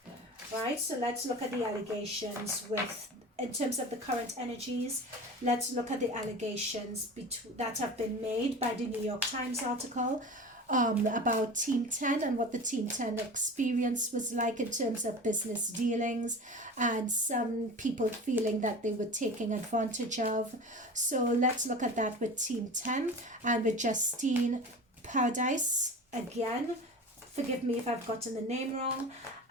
right? So let's look at the allegations with, in terms of the current energies. Let's look at the allegations that have been made by the New York Times article about Team 10 and what the Team 10 experience was like in terms of business dealings, and some people feeling that they were taking advantage of. So let's look at that with Team 10 and with Justine Paradise again. Forgive me if I've gotten the name wrong.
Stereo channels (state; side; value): normal; both; correlation 0.34